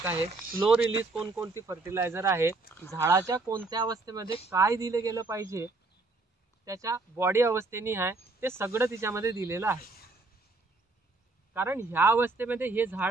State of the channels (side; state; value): left; quieter; 3.4 dB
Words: आहे, स्लो रिलीज कोणकोणती फर्टिलायझर आहे, झाडाच्या कोणत्या अवस्थेमध्ये काय दिले गेलं पाहिजे, त्याच्या बॉडी अवस्थेनी आहे, ते सगळं तिच्यामध्ये दिलेलं आहे. कारण ह्या अवस्थेमध्ये हे